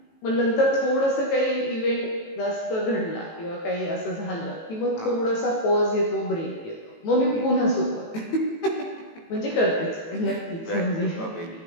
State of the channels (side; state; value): right; late; 18 ms